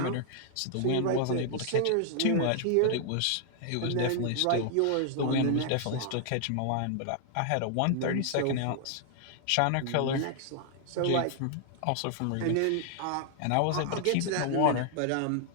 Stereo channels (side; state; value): both; different; correlation 0.00